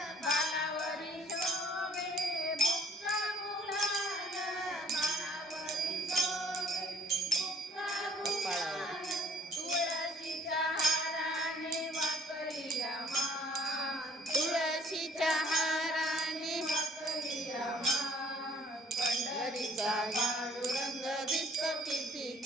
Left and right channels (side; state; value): both; normal; correlation 0.58